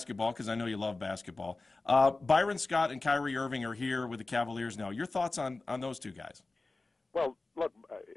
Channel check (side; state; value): right; quieter; 3.4 dB